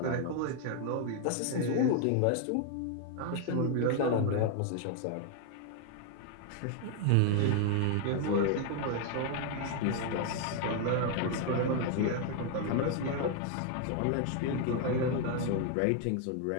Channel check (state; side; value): different; both; correlation 0.00